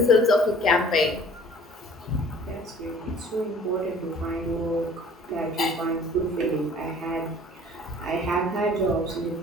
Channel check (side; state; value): both; normal; correlation 0.51